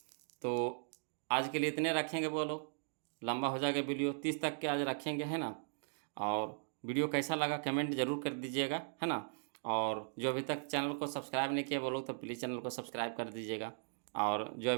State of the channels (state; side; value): silent; left; digital silence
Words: तो आज के लिए इतने रखेंगे, बोलो लंबा हो जाएगा वीडियो, 30 तक के आज रखेंगे, है ना। और वीडियो कैसा लगा कमेंट जरूर कर दीजिएगा, है ना। और जो अभी तक चैनल को सब्सक्राइब नहीं किया बोलो तो प्लीज़ चैनल को सब्सक्राइब कर दीजिएगा। और जो